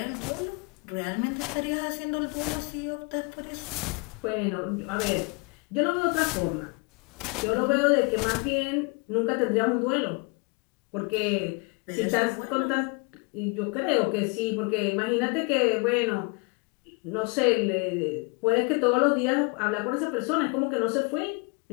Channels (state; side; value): quieter; right; 32.0 dB